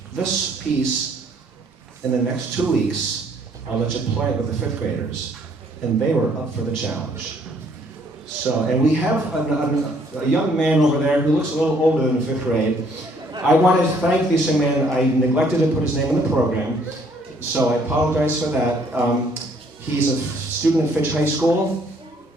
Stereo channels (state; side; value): normal; both; correlation 0.64